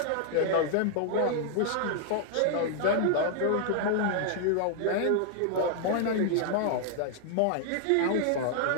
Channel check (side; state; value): both; different; correlation 0.00